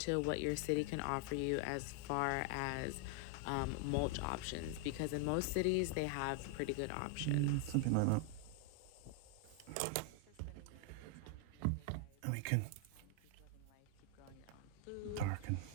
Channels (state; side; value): different; both; correlation 0.00